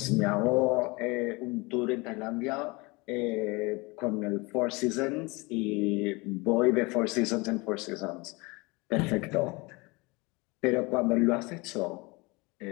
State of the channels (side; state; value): right; quieter; 25.6 dB